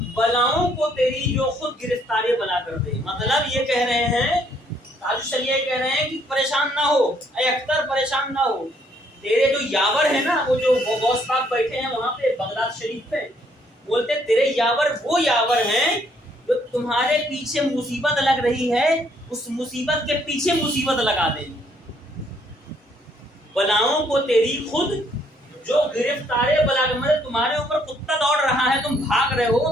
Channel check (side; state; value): both; normal; correlation 0.67